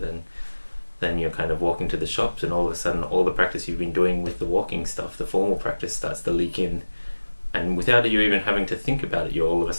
then you're kind of walking to the shops, and all of a sudden all the practice you've been doing with the walking stuff, the formal practice, starts to leak in, and without you even having to think about it, you're all of a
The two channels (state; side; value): inverted; both; correlation -1.00